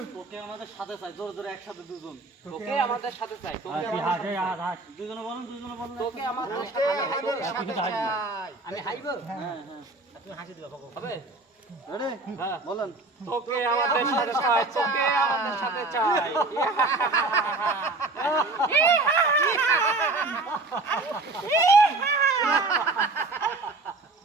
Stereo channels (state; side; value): quieter; left; 3.3 dB